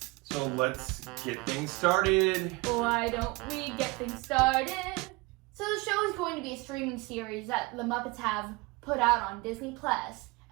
So let's get things started. Why don't we get things started? So the show is going to be a streaming series that the Muppets have put out on Disney Plus,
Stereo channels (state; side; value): quieter; left; 24.4 dB